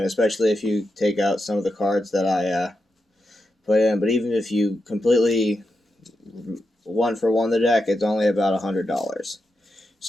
especially if you take out some of the cards that I put in. But even if you completely one for one the deck, it's only about $100.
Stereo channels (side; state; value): both; normal; correlation 0.87